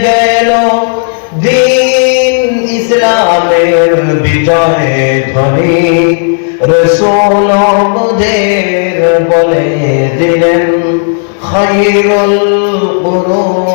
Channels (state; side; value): silent; right; digital silence